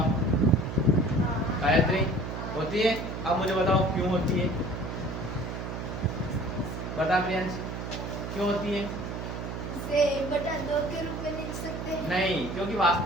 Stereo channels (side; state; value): right; noise; hum, 6 dB below the sound